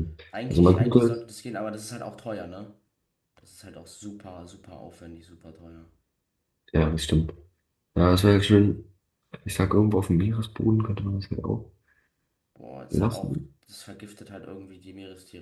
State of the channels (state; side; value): identical; both; correlation 1.00